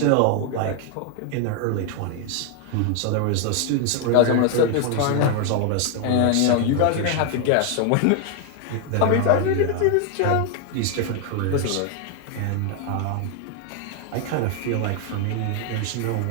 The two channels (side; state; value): both; different; correlation 0.01